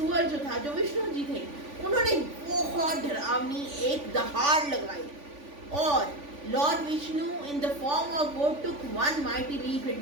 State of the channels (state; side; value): late; left; 3.5 ms